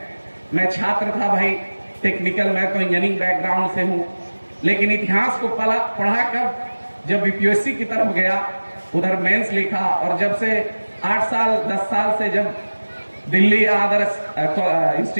मैं छात्र था भाई टेक्निकल, मैं तो इंजीनियरिंग बैकग्राउंड से हूं, लेकिन इतिहास को पढ़ा कर जब यूपीएससी की तरफ गया, उधर मेंस लिखा, और जब से 8 साल 10 साल से जब दिल्ली आदर्श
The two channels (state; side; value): inverted; both; correlation -1.00